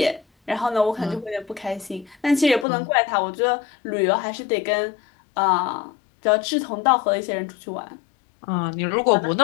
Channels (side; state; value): right; drops out; at 2.7 s